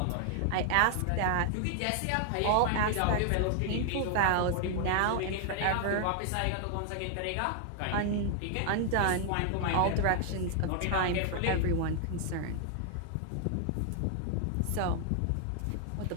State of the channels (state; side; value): different; both; correlation 0.00